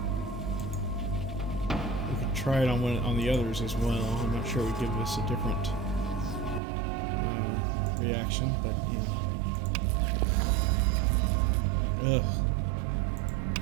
We could try it on the others as well. I'm not sure it would give us a different reaction, but yeah. Ugh.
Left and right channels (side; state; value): left; drops out; at 6.6 s